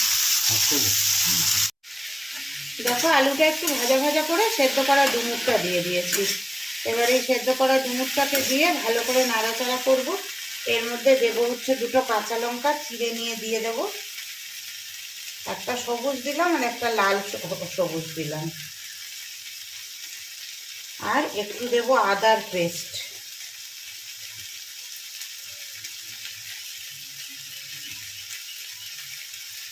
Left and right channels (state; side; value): identical; both; correlation 1.00